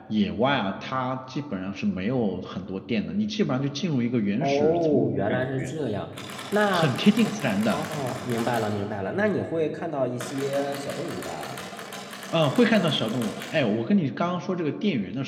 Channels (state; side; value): identical; both; correlation 1.00